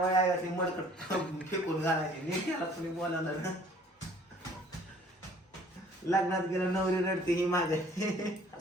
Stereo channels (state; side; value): normal; both; correlation 0.55